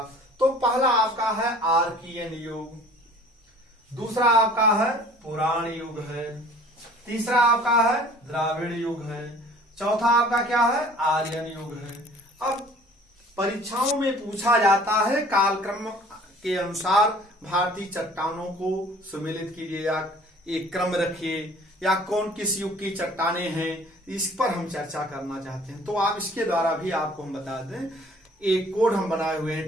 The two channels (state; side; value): normal; both; correlation 0.50